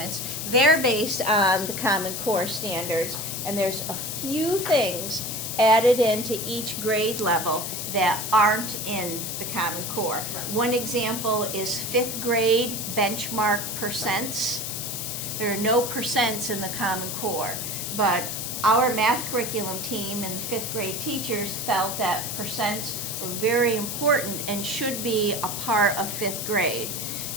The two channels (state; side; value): noise; left; hiss, 4 dB below the sound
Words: they're based on the Common Core standards, and there's a few things added into each grade level that aren't in the Common Core. Right. One example is 5th grade benchmark percents. There are no percents in the Common Core, but our math curriculum team and 5th grade teachers felt that percents were very important and should be a part of 5th grade.